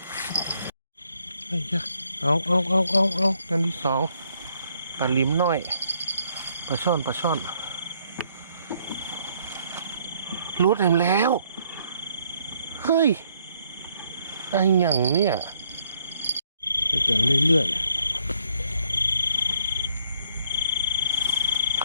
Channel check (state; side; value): inverted; both; correlation -0.69